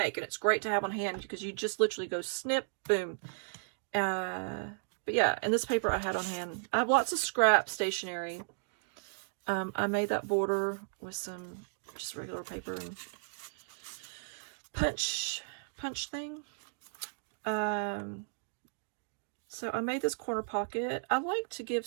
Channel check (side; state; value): left; silent; digital silence